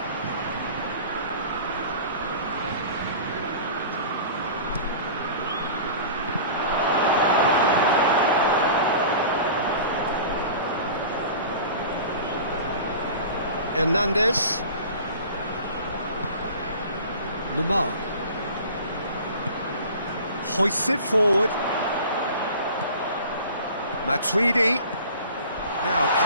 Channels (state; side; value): inverted; both; correlation -0.40